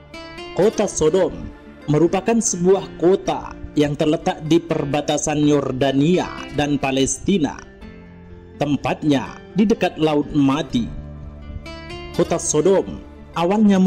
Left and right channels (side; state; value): both; identical; correlation 1.00